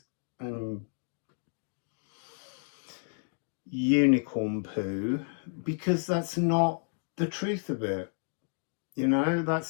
and unicorn poo, because that's not the truth of it. You know,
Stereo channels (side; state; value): right; silent; 57 dB below the other